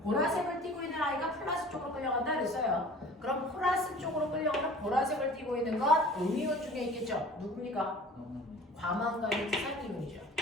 보라색을 띠고 있는 아이가 플러스 쪽으로 끌려간다 그랬어요. 그럼 플러스 쪽으로 끌려가는 보라색을 띠고 있는 건 음이온 중에 있겠죠? 누굽니까? 과망간이지산 이온이죠.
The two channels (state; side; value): normal; both; correlation 0.45